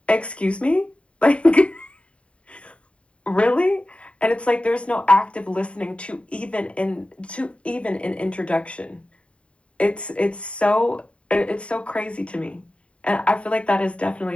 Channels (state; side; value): late; right; 0.061 ms